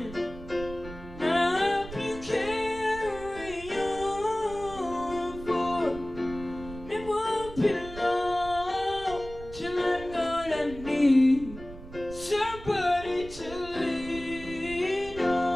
Somebody to lean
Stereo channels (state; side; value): noise; right; rumble, 14 dB below the sound